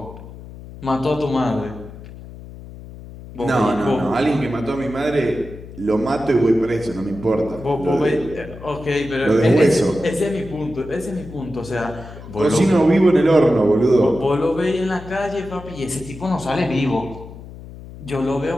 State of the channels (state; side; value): noise; left; hum, 15 dB below the sound